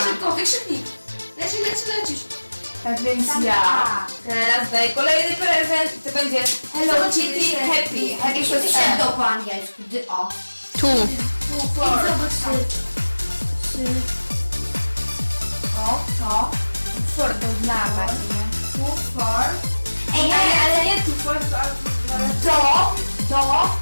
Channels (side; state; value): both; inverted; correlation -1.00